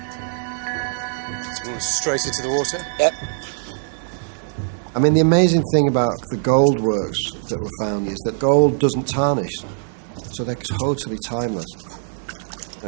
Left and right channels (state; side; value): silent; left; digital silence